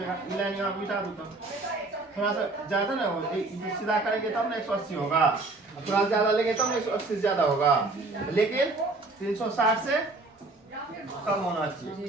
ये लाइन यहाँ मिटा दो तो थोड़ा सा ज्यादा ना हो, सीधा करेंगे तब ना 180 होगा, थोड़ा ज्यादा लेंगे तब ना 180 से ज्यादा होगा, लेकिन 360 से कम होना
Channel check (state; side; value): quieter; left; 3.3 dB